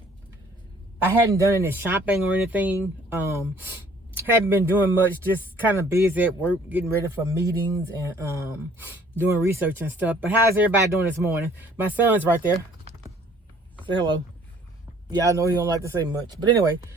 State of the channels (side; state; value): both; normal; correlation 0.57